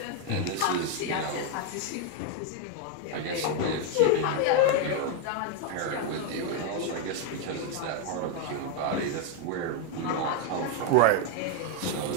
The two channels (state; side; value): different; both; correlation 0.00